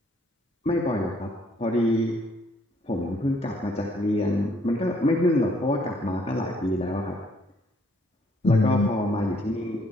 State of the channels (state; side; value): normal; both; correlation 0.66